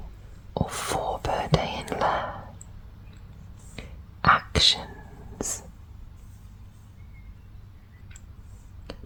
or 4 per day in lair. Actions:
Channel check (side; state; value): both; identical; correlation 1.00